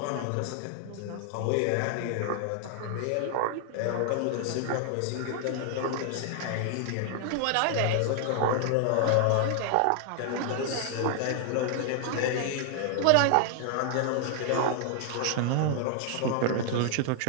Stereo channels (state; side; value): different; both; correlation 0.00